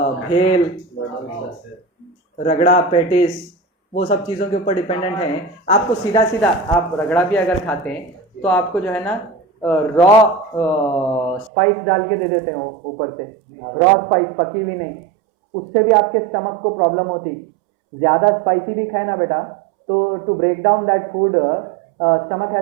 भेल, रगड़ा, पेटिस, वो सब चीज़ों के ऊपर डिपेंडेंट हैं। आपको सीधा सीधा आप रगड़ा भी अगर खाते हैं तो आपको जो है ना रॉ स्पाइस डाल के दे देते हैं ऊपर से, रॉ स्पाइस, पकी हुई नहीं, उससे भी आपके स्टमक को प्रॉब्लम होती। ज़्यादा स्पाइसी भी खाए ना बेटा, तो to break down that food stomach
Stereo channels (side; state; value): left; drops out; at 11.5 s